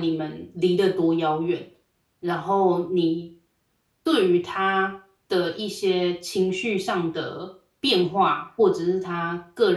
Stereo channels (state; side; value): identical; both; correlation 1.00